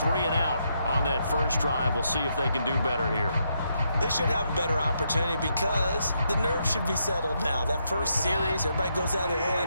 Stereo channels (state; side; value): inverted; both; correlation -0.79